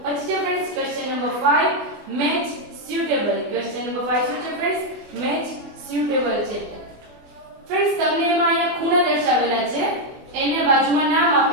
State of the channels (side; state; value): left; late; 24 ms